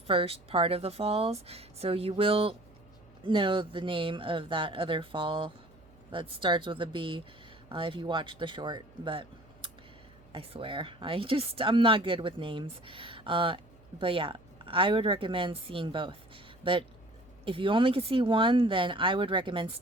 first part of the falls. So you will know the name of that other fall that starts with a B if you watch the short. But I swear, I'm not good with names. But yeah, I would recommend seeing both. But if you only could see one, then I would recommend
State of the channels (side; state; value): right; noise; hum, 27 dB below the sound